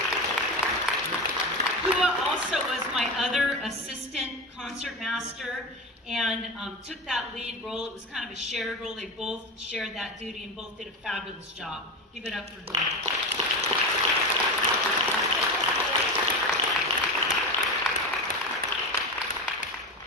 Also was my other assistant concert master and took that lead role. It was kind of a shared role. They both shared that duty and both did a fabulous job. Give it up for her.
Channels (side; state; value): both; normal; correlation 0.22